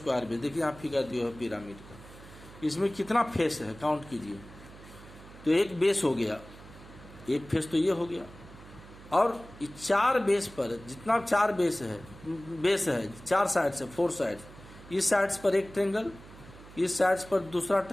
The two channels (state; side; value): noise; right; hum, 19 dB below the sound